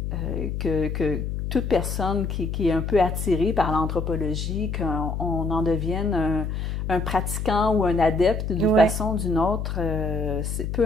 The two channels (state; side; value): noise; left; hum, 3 dB below the sound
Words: que toute personne qui est un peu attirée par l'anthropologie, qu'on en devienne un pratiquant ou un adepte d'une façon ou d'une autre, peu